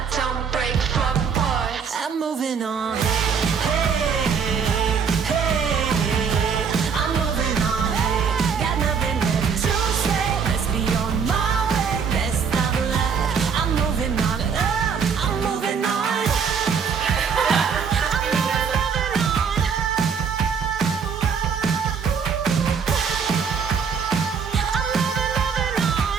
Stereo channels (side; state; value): left; quieter; 6.3 dB